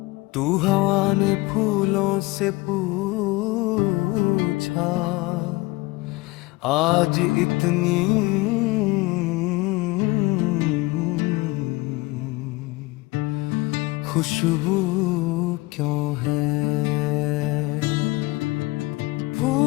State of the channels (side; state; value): right; quieter; 21.6 dB